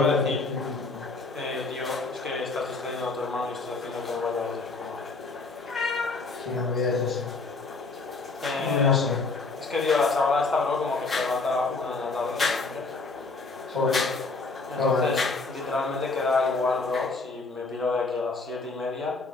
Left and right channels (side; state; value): right; quieter; 3.8 dB